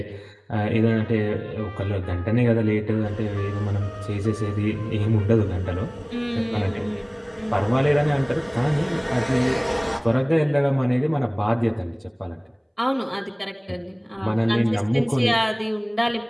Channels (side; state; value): both; identical; correlation 1.00